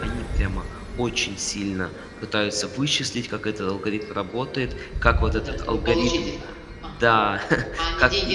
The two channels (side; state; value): both; identical; correlation 1.00